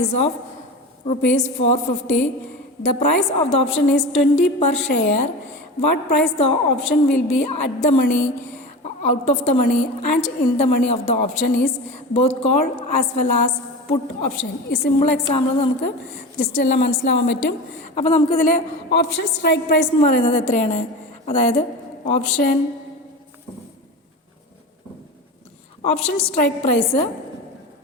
is of rupees 450. The price of the option is 20 per share. What price the option will be at the money, out of the money and in the money of the option is both call as well as put option. ഈ simple example നമുക്ക് just എല്ലാം മനസ്സിലാവാൻ പറ്റും. അപ്പോൾ നമുക്കിതിൽ option strike price എന്ന് പറയുന്നത് എത്രയാണ്? അതായത് option strike price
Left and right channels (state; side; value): normal; both; correlation 0.29